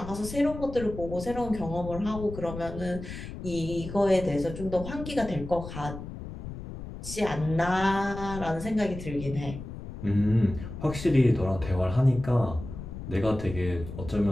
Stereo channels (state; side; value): noise; left; rumble, 10 dB below the sound